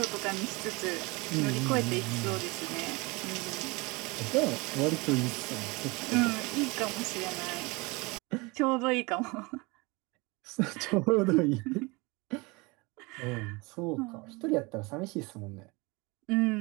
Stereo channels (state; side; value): quieter; left; 25.8 dB